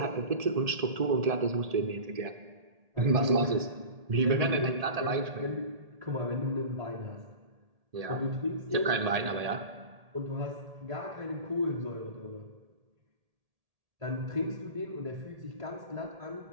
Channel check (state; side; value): late; left; 1.8 ms